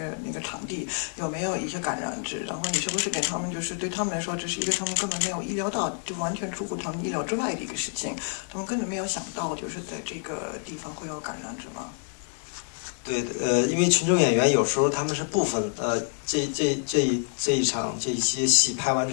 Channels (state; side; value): silent; right; 60 dB below the other